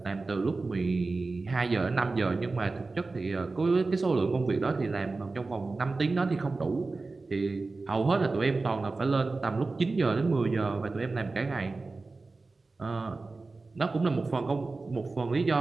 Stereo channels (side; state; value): left; quieter; 3.7 dB